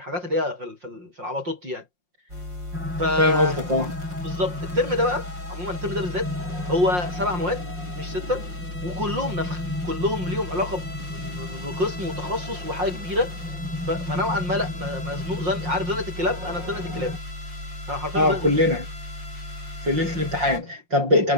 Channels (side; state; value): left; late; 5.6 ms